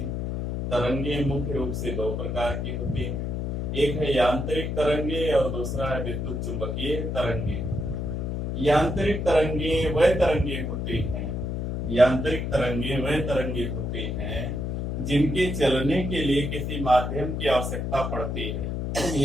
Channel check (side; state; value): left; noise; hum, 2 dB below the sound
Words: तरंगे मुख्य रूप से दो प्रकार की होती हैं। एक है यांत्रिक तरंगे और दूसरा है विद्युत चुंबकीय तरंगे। यांत्रिक तरंगे वह तरंगे होती हैं यांत्रिक तरंगे वह तरंगे होती हैं जिनके चलने के लिए किसी माध्यम की आवश्यकता पड़ती है।